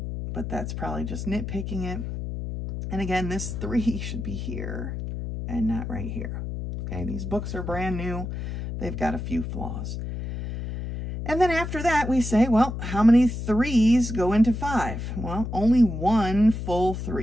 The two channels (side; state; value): left; noise; hum, 5 dB below the sound